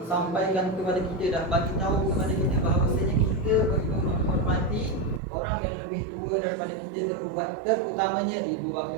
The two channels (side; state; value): left; drops out; at 5.2 s